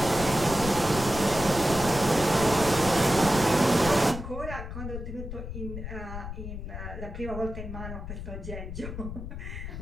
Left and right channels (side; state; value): left; noise; rumble, 8 dB below the sound